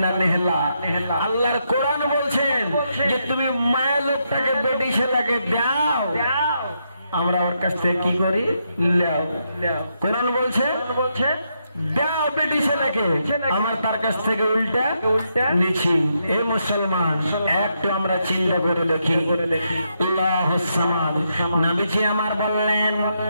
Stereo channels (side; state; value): both; inverted; correlation -0.80